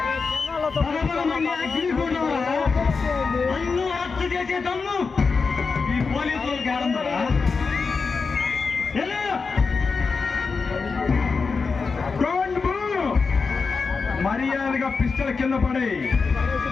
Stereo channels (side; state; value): right; quieter; 4.8 dB